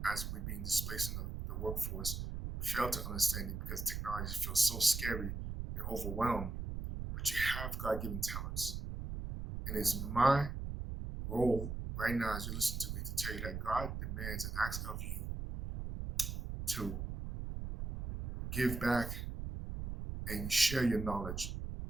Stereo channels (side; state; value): right; noise; rumble, 5 dB below the sound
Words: as we're being displaced in the workforce, fail to understand it because technology feels so scary and overwhelmed. But you have God-given talents. And it's my role right now as you listen to me to tell you that God demands and asks of you to give back and share your knowledge.